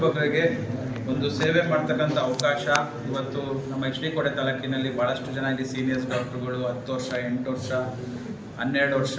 ಬಗ್ಗರಿಗೆ ಒಂದು ಸೇವೆ ಮಾಡ್ತಕ್ಕಂಥ ಅವಕಾಶ ಇವತ್ತು ನಮ್ಮ HD ಕೋಟೆ ತಾಲೂಕಿನಲ್ಲಿ ಭಾಳಷ್ಟು ಜನ ಇಲ್ಲಿ ಸೀನಿಯರ್ಸ್ ಡಾಕ್ಟ್ರುಗಳು 10 ವರ್ಷ 8 ವರ್ಷ 12 ವರ್ಷ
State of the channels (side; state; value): both; identical; correlation 1.00